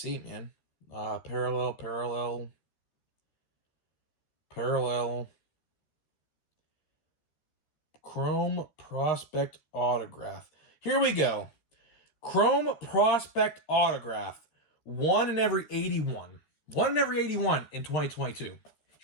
man. Parallel. Chrome Prospect Autograph. Here we go. Chrome Prospect Autograph. 1 in every 81. 1 in every 81 in 2022.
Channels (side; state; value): right; late; 13 ms